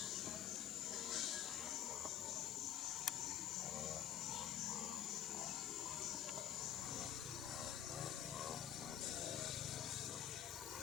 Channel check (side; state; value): right; quieter; 10.2 dB